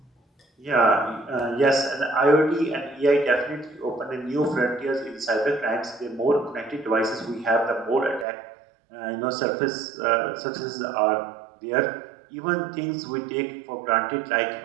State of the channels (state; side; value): drops out; left; at 8.2 s